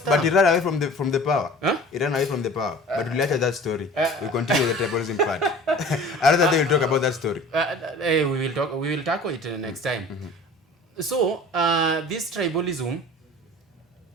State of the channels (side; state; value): both; normal; correlation 0.43